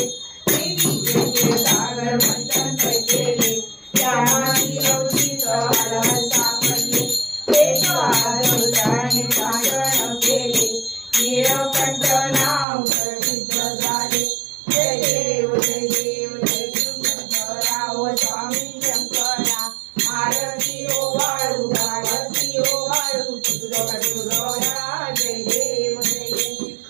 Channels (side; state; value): left; drops out; at 12.7 s